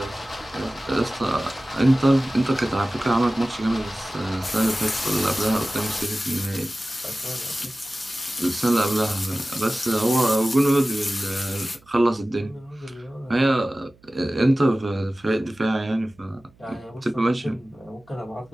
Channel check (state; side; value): noise; right; hum, 29 dB below the sound